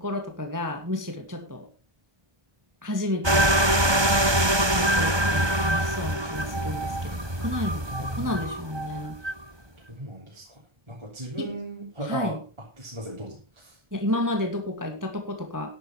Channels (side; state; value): left; late; 1.2 ms